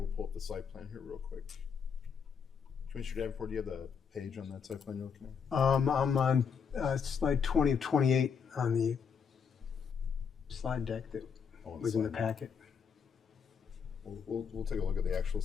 pull up the site plan here real quick. Commissioner Davenport, do you have the page on that site plan you're looking at? I'm on slide 20 of 28 on the slide deck that Oh, was in the slide deck. packet. We'll take a look at the actual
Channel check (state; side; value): quieter; right; 6.6 dB